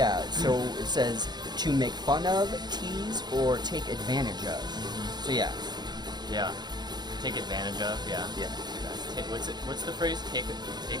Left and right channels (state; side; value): late; left; 0.20 ms